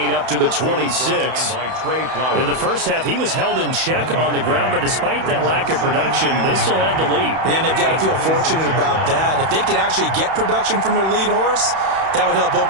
up to the 26. In the first half, he was held in check on the ground, but despite that lack of production, they still have the lead. Yeah, and they've got to feel fortunate about that. If they could actually get production from their lead horse, that would help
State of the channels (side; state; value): left; late; 31 ms